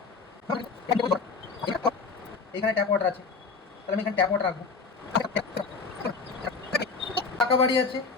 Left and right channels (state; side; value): quieter; right; 4.8 dB